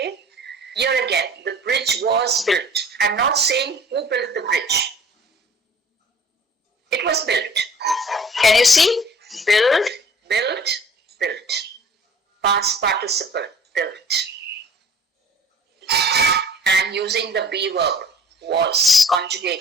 here again, the bridge was built. I'm not saying who built the bridge. It was built. Can you see? Build, built, built. Past participle, built. And using the be verb, was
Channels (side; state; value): both; normal; correlation 0.49